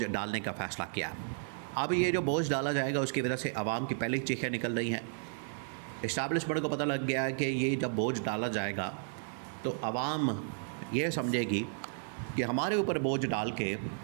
डालने का फ़ैसला किया। अब ये जो बोझ डाला जाएगा उसकी वजह से आवाम की पहले चीखें निकल रही हैं। इस्टेब्लिशमेंट को पता लग गया है कि ये जब बोझ डाला जाएगा तो आवाम ये समझेगी कि हमारे ऊपर बोझ डाल के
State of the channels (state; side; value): silent; left; 55 dB below the other